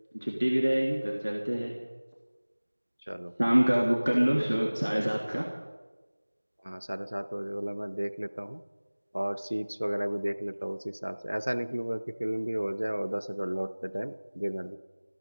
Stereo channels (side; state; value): both; inverted; correlation -1.00